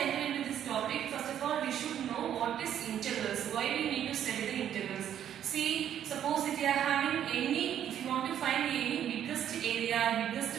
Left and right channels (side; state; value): left; quieter; 10.1 dB